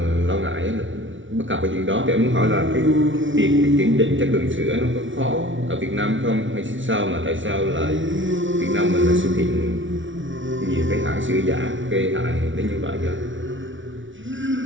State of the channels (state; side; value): late; left; 0.56 ms